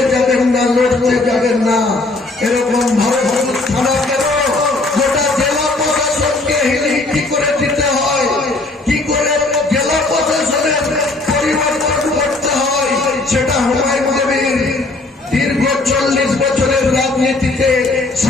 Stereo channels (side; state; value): right; quieter; 3.2 dB